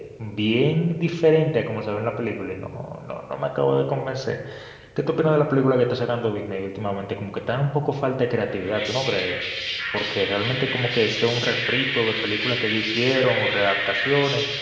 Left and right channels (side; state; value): both; identical; correlation 1.00